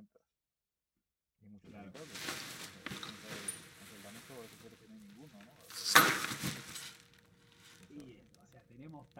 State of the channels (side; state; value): both; identical; correlation 1.00